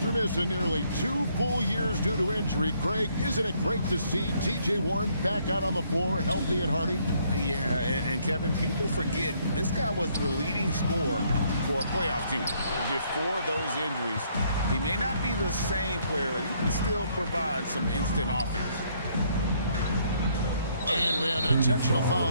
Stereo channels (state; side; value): inverted; both; correlation -0.68